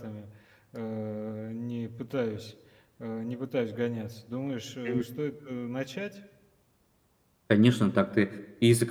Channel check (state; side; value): identical; both; correlation 1.00